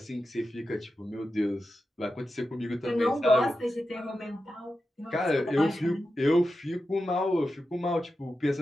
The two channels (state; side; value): normal; both; correlation 0.90